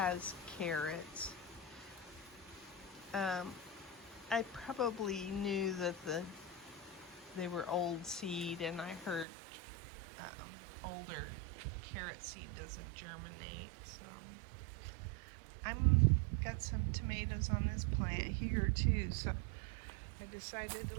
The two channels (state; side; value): drops out; left; at 9.2 s